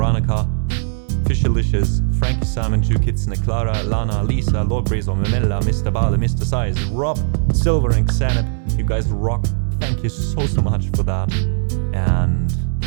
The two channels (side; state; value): left; silent; digital silence